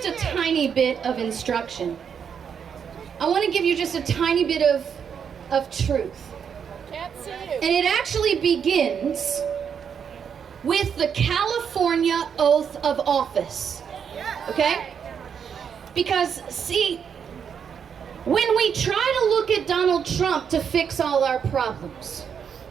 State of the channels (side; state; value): left; quieter; 7.3 dB